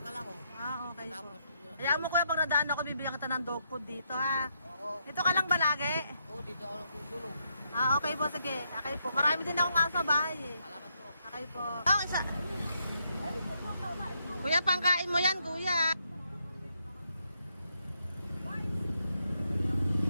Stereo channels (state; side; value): inverted; both; correlation -0.78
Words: ako. Okay po. Tapos, Hayaan mo kuya, pag nadaan ako, bibigyan kita ng dog food dito, ha? oo. Dito ka lang ba lagi? Oo, dito ako lang tutulog. Okay po, sige. Okay po. Marami din akong aso sa bahay, eh. Salamat po. Okay po. Isa. Kuya, pangkain mo yan, kuya.